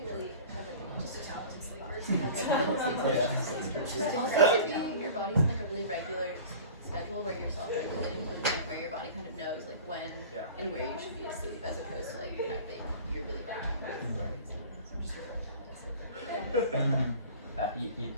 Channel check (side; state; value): both; inverted; correlation -0.40